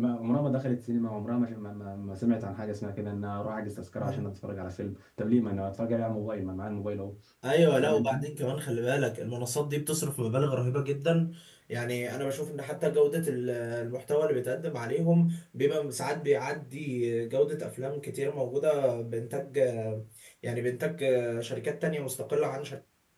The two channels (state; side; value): identical; both; correlation 1.00